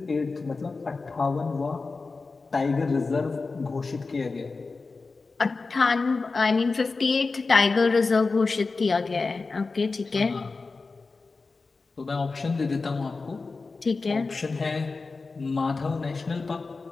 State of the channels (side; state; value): right; quieter; 4.0 dB